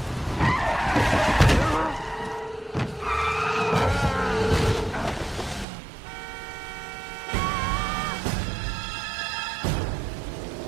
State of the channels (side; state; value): left; drops out; at 5.7 s